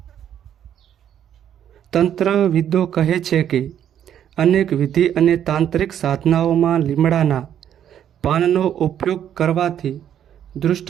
તંત્રવિદો કહે છે કે અનેક વિધિ અને તાંત્રિક સાધનાઓમાં લીમડાના પાનનો ઉપયોગ કરવાથી દુષ્ટ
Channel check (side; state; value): left; quieter; 9.9 dB